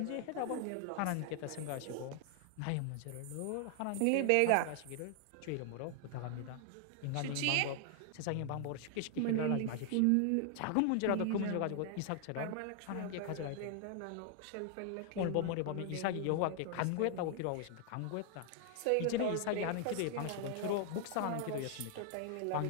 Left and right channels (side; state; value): both; different; correlation 0.00